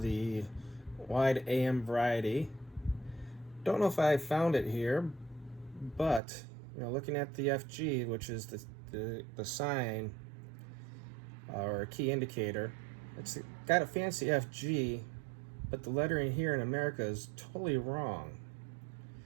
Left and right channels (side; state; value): left; drops out; at 6.2 s